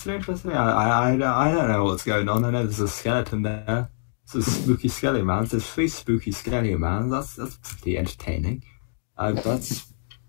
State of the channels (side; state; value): right; silent; digital silence